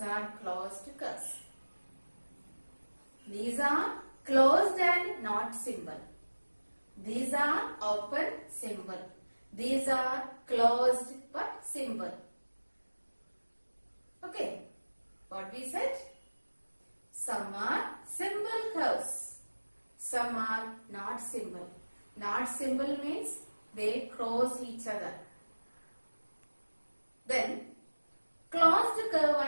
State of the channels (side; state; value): both; inverted; correlation -1.00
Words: are closed curves. These are closed and not symbol. These are open symbol. These are closed but symbol. Okay. What we said? Some are symbol curves. Some are not symbol. Not symbol means they cross each other. Then closed curve